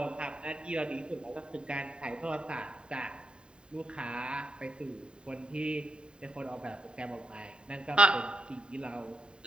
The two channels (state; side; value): late; left; 0.051 ms